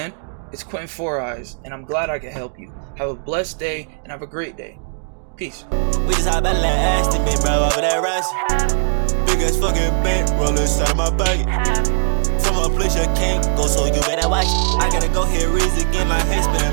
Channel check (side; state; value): left; silent; 56 dB below the other